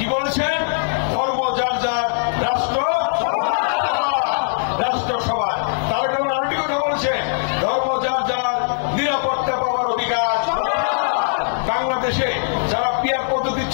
বলেছেন? ধর্ম যার যার, রাষ্ট্র সবার। তারা কেমন আরেকটি কথা বলেছেন, ধর্ম যার যার, নিরাপত্তা পাওয়ার অধিকার। বাংলাদেশে যারা পিয়ার পদ্ধতি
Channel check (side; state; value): right; silent; digital silence